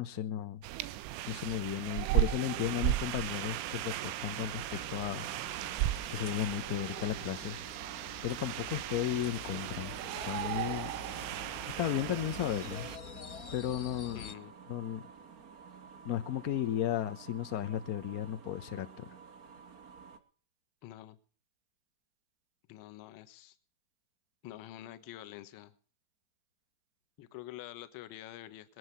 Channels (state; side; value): late; left; 4.3 ms